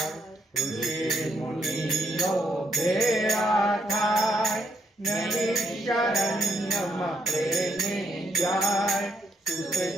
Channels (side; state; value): both; normal; correlation 0.75